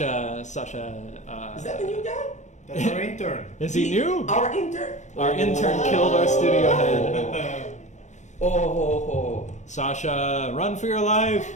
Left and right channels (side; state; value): right; late; 0.34 ms